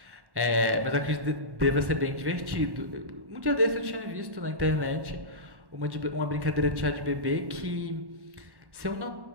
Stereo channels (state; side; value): late; left; 1.1 ms